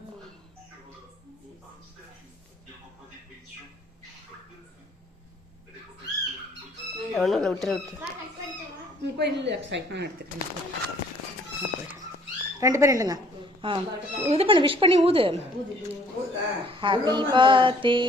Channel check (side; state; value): both; normal; correlation 0.59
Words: ஒன்றும் விட்டுரு விட்டு போய் எடுத்துக்கிறேன். ரெண்டு பேரும் இல்லைங்க. இது பண்ணு, விஷ் பண்ணி ஊது. Happy birthday